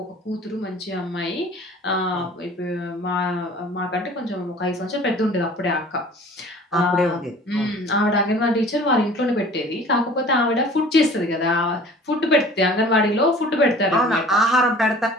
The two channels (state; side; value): normal; both; correlation 0.46